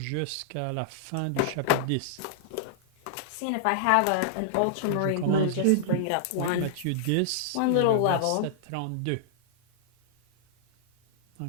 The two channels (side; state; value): both; different; correlation -0.01